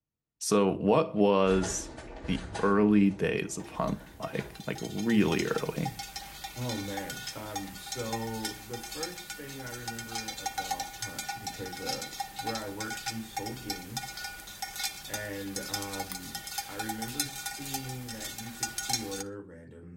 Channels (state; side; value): identical; both; correlation 1.00